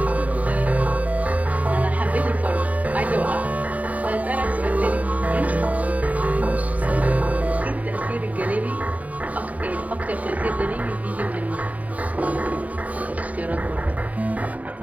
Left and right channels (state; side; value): late; left; 0.071 ms